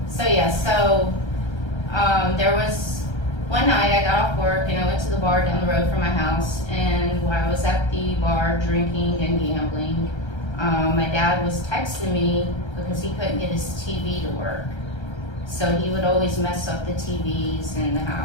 There was one night I got off work and I went to the bar down the road from my house, and while I was at the bar drinking and gambling, my dad was texting me because he couldn't get his TV to work. So he would always mess up the TVs in the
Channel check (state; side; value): late; right; 1.3 ms